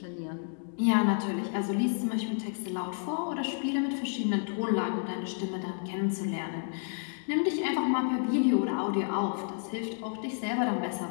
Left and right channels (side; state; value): right; silent; 57 dB below the other